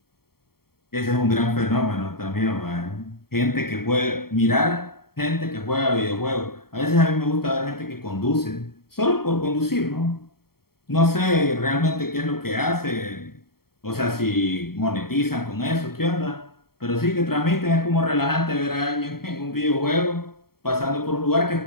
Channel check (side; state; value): right; late; 0.94 ms